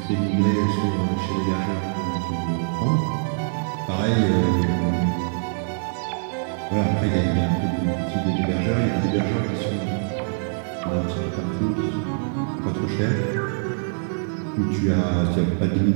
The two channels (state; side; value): silent; left; 63 dB below the other